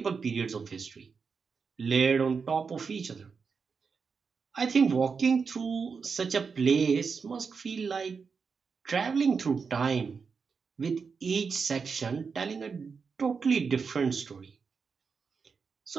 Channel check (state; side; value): quieter; left; 5.4 dB